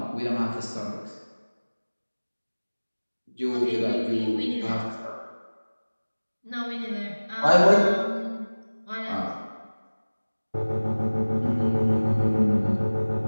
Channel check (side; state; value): both; inverted; correlation -1.00